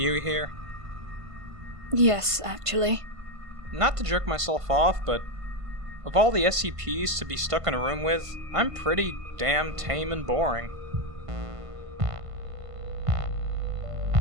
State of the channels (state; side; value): late; left; 1.5 ms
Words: here? Yes, actually. Not to jerk myself off, but of all the SCPs to be stuck in a room with, I'm pretty damn tame and boring.